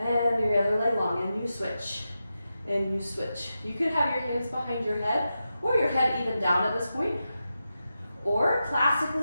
your other leg long, and you switch, and you switch. You could have your hands behind your head or your head even down at this point. Or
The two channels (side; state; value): both; inverted; correlation -0.90